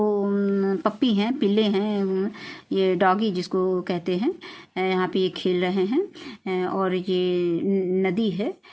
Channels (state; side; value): identical; both; correlation 1.00